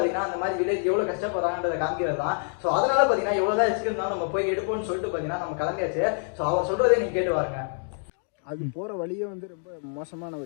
அந்த மாதிரி வில்லேஜ் எவ்வளோ கஷ்டப்படுறாங்கன்றதை காமிக்கிறது தான். ஸோ அதனால பார்த்தீங்கன்னா எவ்வளோதான் இருந்தாலும் நம்ம போய் எடுப்போம்னு சொல்லிட்டு பார்த்தீங்கன்னா நம்ம கிளம்பியாச்சு. ஸோ அவர் சொல்றதே நீங்க கேட்டு பாருங்க. அது போகிற வழியே வந்து ரொம்ப மோசமான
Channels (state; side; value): silent; right; 56 dB below the other